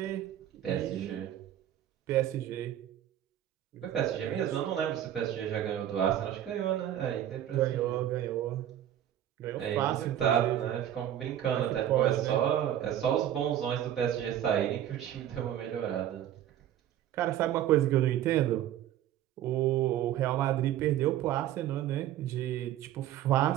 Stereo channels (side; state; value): left; quieter; 11.4 dB